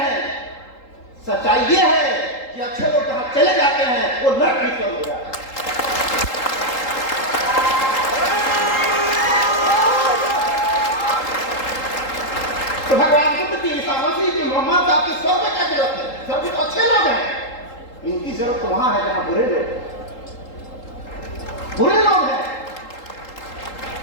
सच्चाई ये है कि अच्छे लोग जहां चले जाते हैं वो नरक भी स्वर्ग हो जाता है। तो भगवान बुद्ध की, ईसा मसीह की, मोहम्मद साहब की स्वर्ग में क्या जरूरत है? स्वर्ग तो अच्छे लोग हैं, इनकी जरूरत तो वहां है जहां बुरे लोग हैं।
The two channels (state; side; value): late; right; 3.8 ms